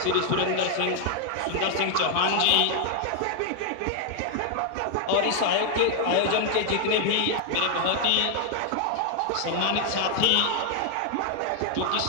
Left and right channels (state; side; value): different; both; correlation 0.00